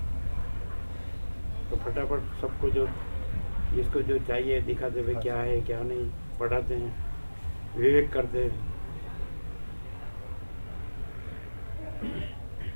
तो फटाफट सबको जो जिसको जो चाहिए दिखाते हुए क्या है क्या नहीं, पढ़ाते हैं, विवेक करते हैं,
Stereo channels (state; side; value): inverted; both; correlation -1.00